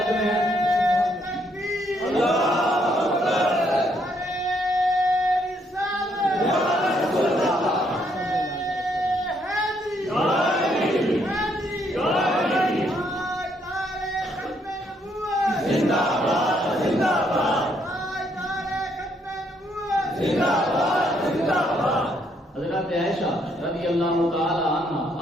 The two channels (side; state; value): both; normal; correlation 0.72